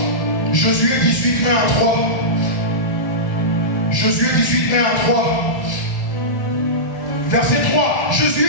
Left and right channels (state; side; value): late; right; 1.8 ms